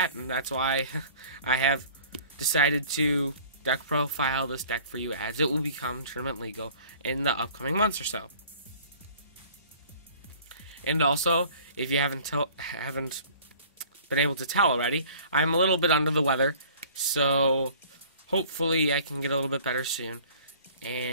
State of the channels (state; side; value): inverted; both; correlation -0.50